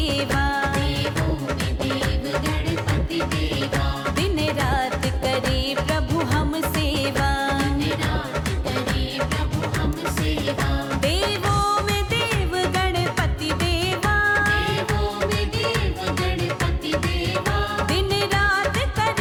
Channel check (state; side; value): identical; both; correlation 1.00